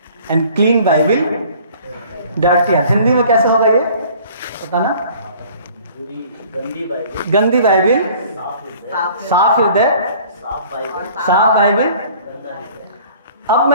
and clean Bible dirty heart. Hindi में कैसे होगा ये पता ना? गंदी बाइबल साफ हृदय, साफ बाइबल। अब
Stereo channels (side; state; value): both; inverted; correlation -0.51